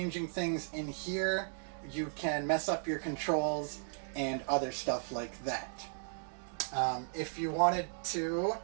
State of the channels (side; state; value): left; silent; digital silence